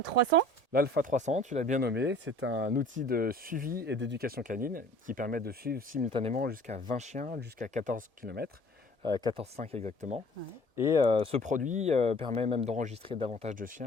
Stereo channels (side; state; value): left; late; 1.7 ms